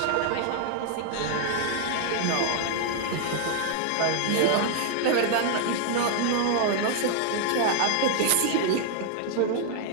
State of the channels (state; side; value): different; both; correlation 0.00